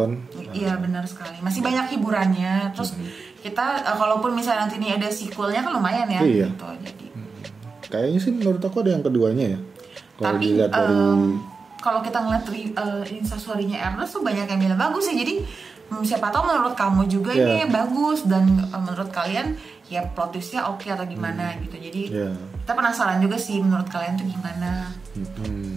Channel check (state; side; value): quieter; left; 4.6 dB